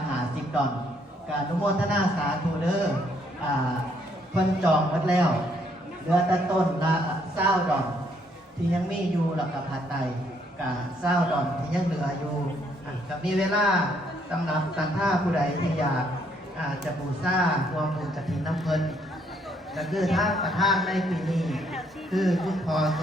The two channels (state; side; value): normal; both; correlation 0.69